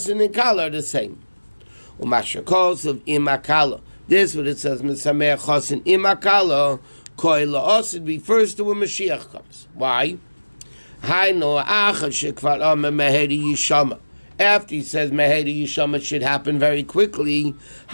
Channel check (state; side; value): inverted; both; correlation -1.00